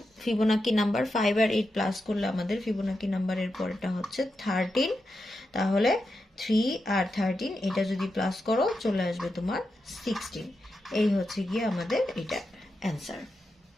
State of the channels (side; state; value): both; normal; correlation 0.88